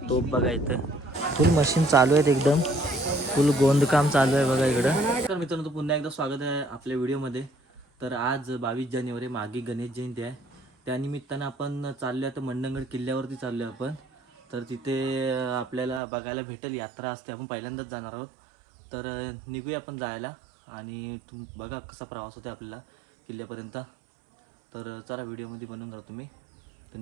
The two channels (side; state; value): left; drops out; at 16.0 s